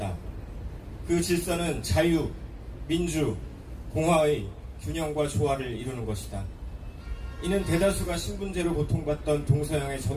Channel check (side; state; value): both; identical; correlation 1.00